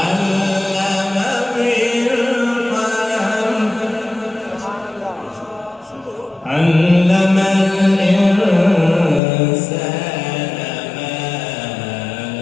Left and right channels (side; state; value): right; drops out; at 9.2 s